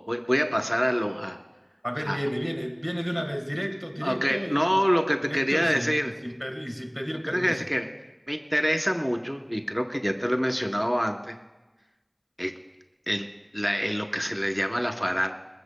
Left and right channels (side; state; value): both; identical; correlation 1.00